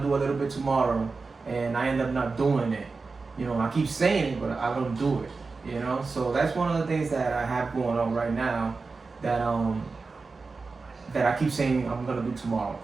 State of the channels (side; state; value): left; quieter; 4.2 dB